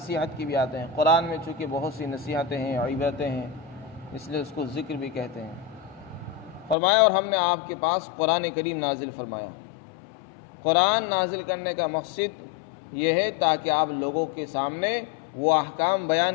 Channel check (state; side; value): drops out; right; at 6.8 s